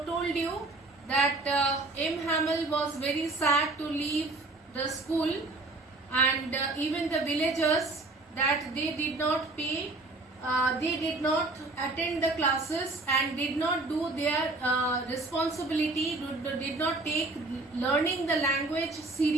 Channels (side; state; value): left; quieter; 3.1 dB